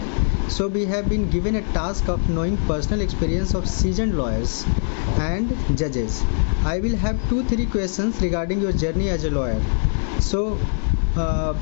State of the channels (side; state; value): right; silent; digital silence